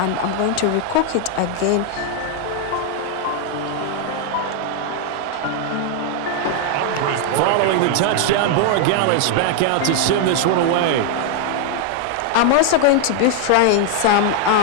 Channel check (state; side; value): different; both; correlation 0.00